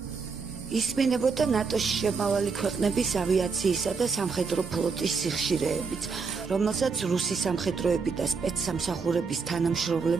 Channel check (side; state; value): left; quieter; 5.0 dB